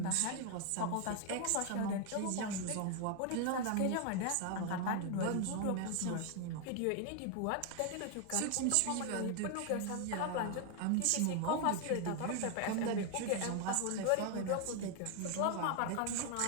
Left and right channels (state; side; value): different; both; correlation 0.01